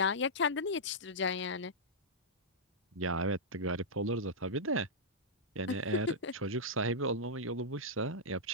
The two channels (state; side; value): normal; both; correlation -0.11